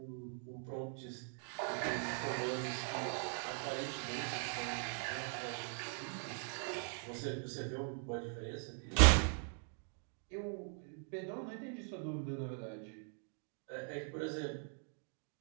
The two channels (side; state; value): left; silent; 50 dB below the other